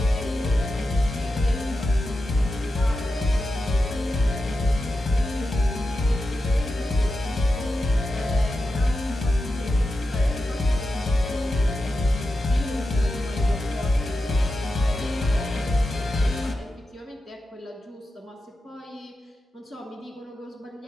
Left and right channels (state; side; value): normal; both; correlation 0.90